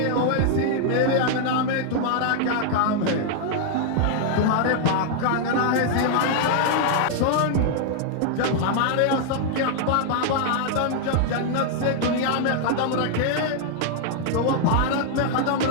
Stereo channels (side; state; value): both; different; correlation 0.00